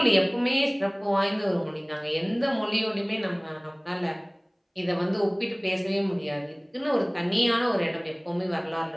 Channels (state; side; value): identical; both; correlation 1.00